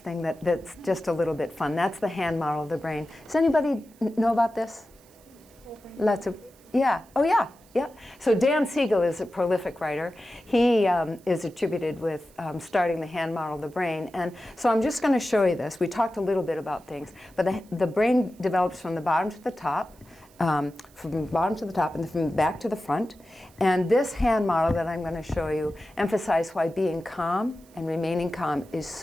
that's just a little bit fun. That's the hand model of the brain. Does anybody know about this? Lots of, yeah. Oh yeah. Yeah. So Dan Siegel is a prolific writer. He is attributed with starting the hand model of the brain. And so I'm just going to show you this. We talked a little bit about things. But the brain develops from the bottom to the top, and then from the back to the front. And this hand model that I'm going to show you emphasizes why being calm and remaining calm is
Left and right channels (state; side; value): noise; right; hiss, 29 dB below the sound